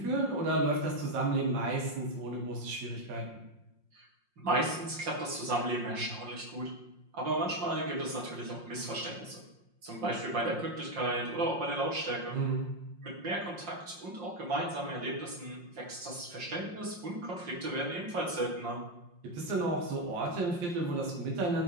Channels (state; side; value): late; left; 5.6 ms